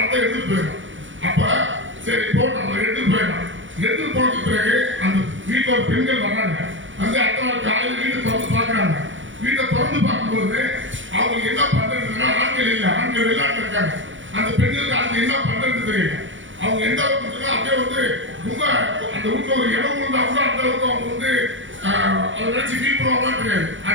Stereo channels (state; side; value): late; left; 0.56 ms